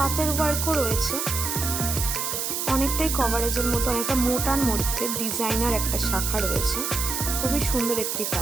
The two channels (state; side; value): noise; right; hiss, 2 dB below the sound